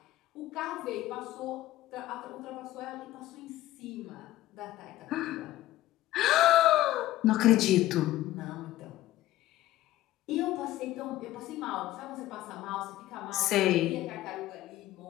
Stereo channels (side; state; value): right; quieter; 15.2 dB